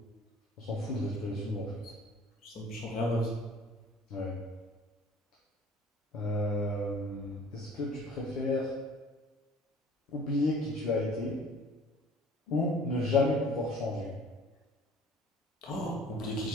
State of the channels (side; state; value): both; normal; correlation 0.50